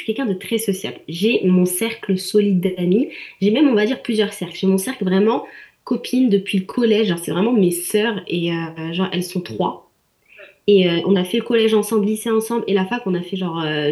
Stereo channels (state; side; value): identical; both; correlation 1.00